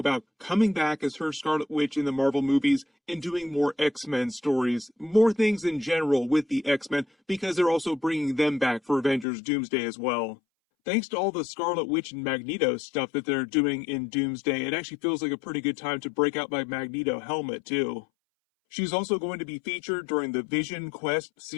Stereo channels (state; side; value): drops out; right; at 9.2 s